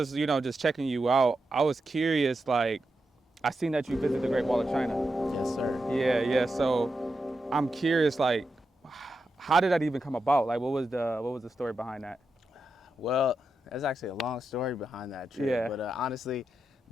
just checking you out, I was curious. Like, I seen that you visited the Great Wall of China. Yes, sir. Yeah. So I'm curious, like, how did that even come about? Like, what was the story behind that? Well, there's actually a long story behind that trip. Yeah. But honestly,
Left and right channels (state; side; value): normal; both; correlation 0.87